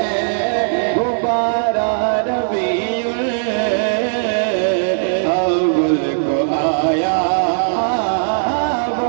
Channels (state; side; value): silent; left; digital silence